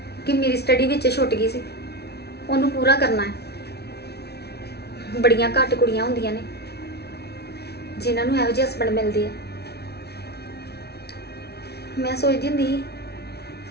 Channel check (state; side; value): late; right; 0.48 ms